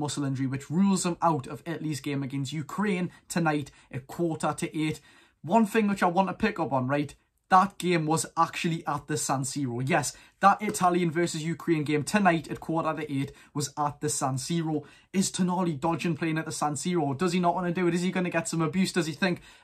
injury which rules them out of Italy's game against Ukraine tonight at 7:45. One thing which I want to pick up on, right? That game was actually at the San Siro. Yes, that Italian versus Ukraine game tonight at 7:45 was at the San Siro. Is Tonali dodging playing at the San Siro? Does he not want to do it? Is he going to get some abuse? Does he think?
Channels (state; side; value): identical; both; correlation 1.00